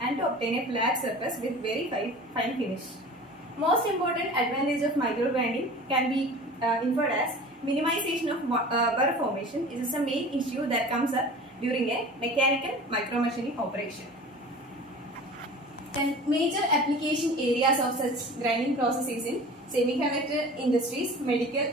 and to obtain a flat surface with very fine finish. Most important advantage of micro grinding can be inferred as minimization of burr formation. This is a main issue that comes up during a mechanical micro machining operation. Then major application areas of such grinding processes in semiconductor industries,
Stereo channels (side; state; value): both; normal; correlation 0.40